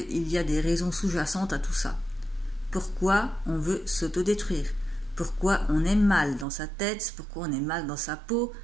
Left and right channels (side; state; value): left; drops out; at 6.5 s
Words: y a des raisons sous-jacentes à tout ça. Pourquoi on veut s'auto-détruire? Pourquoi on est mal dans sa tête? Pourquoi on est mal dans sa peau?